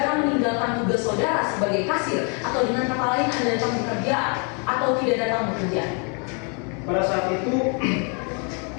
meninggalkan tugas saudara sebagai kasir atau dengan kata lain Anda datang bekerja atau tidak datang bekerja? Pada saat itu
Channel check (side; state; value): right; quieter; 37.0 dB